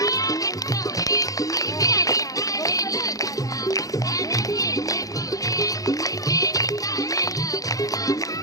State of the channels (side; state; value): right; late; 0.17 ms